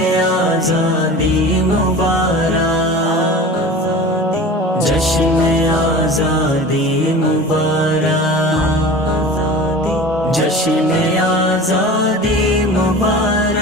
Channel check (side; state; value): both; normal; correlation 0.37